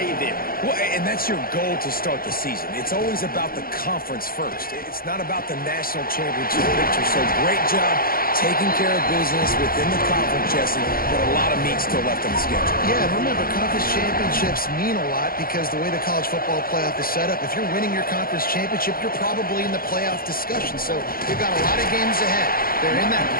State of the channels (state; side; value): late; right; 0.42 ms